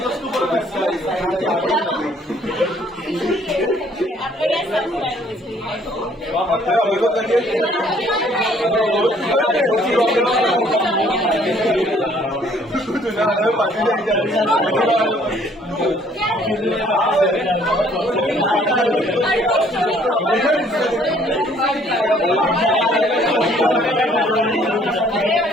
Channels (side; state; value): both; normal; correlation 0.61